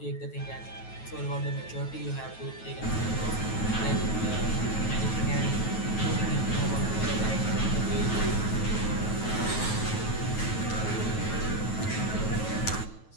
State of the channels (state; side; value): late; right; 9.3 ms